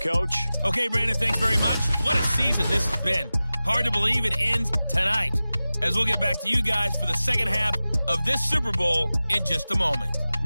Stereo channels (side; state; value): both; inverted; correlation -0.97